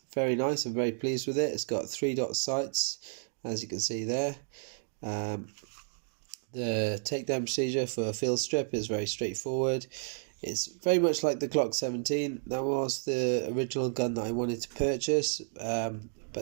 very nice. I'm very pleased with it. It's got 3-dot sights, as you can see there. The takedown procedure for a field strip is very straightforward. It's very much like the Glock 17. That was the original gun that I wanted to purchase,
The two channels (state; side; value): silent; left; digital silence